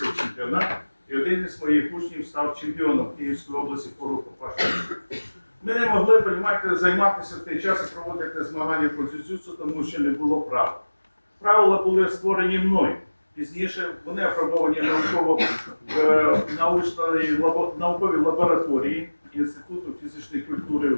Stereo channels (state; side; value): inverted; both; correlation -1.00